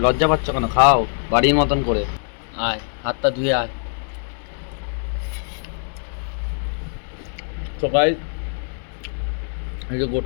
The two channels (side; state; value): right; silent; 63 dB below the other